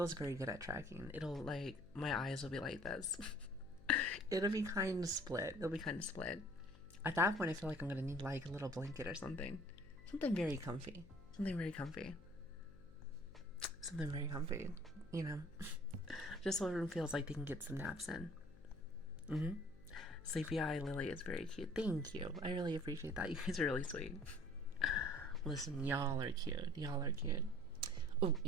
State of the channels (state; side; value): noise; left; hum, 20 dB below the sound